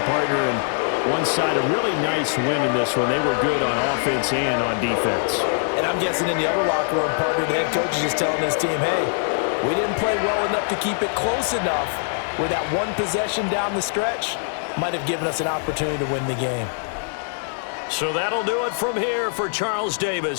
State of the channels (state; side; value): silent; right; 64 dB below the other